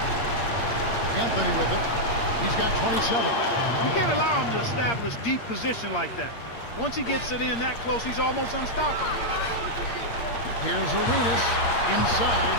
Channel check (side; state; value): right; late; 8.6 ms